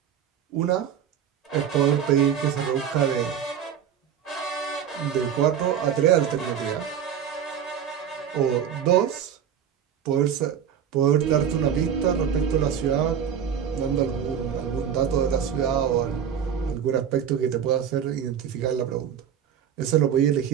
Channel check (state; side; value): quieter; left; 8.6 dB